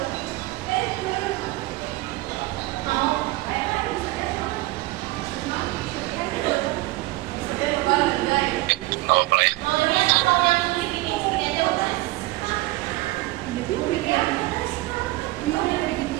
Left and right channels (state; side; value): quieter; left; 19.8 dB